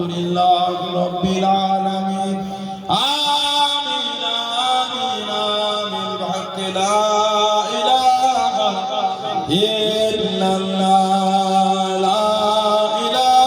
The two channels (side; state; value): both; identical; correlation 1.00